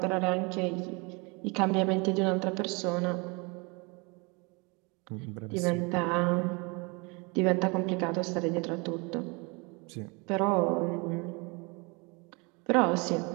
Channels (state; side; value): quieter; left; 29.5 dB